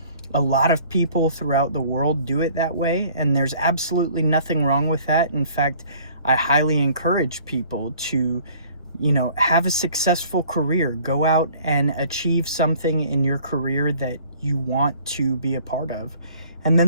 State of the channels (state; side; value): inverted; both; correlation -0.54